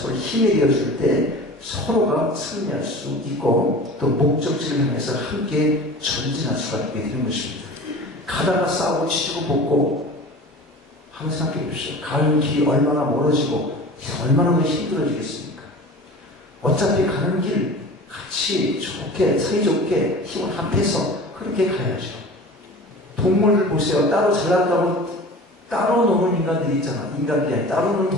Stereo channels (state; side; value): normal; both; correlation 0.38